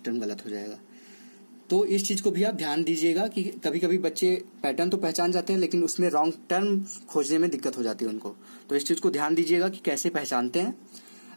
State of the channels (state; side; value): inverted; both; correlation -1.00